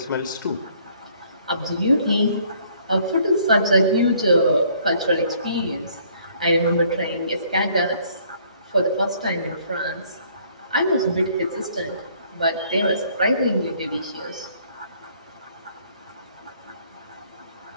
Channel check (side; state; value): both; inverted; correlation -0.62